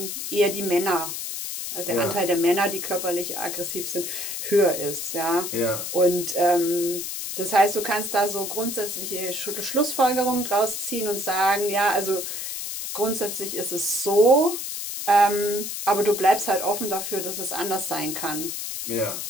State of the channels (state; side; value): noise; left; hiss, 5 dB below the sound